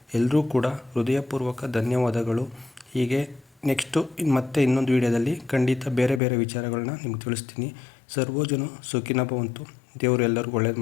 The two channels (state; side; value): drops out; right; at 6.2 s